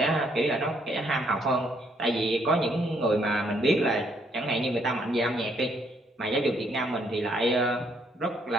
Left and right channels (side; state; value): both; normal; correlation 0.70